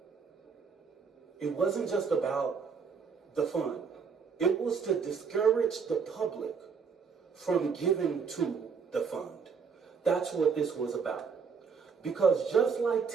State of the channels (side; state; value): left; quieter; 5.7 dB